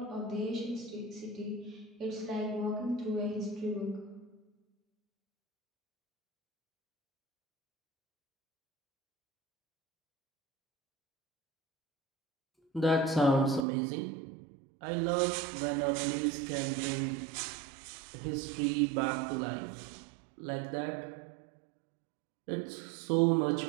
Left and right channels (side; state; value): left; drops out; at 13.7 s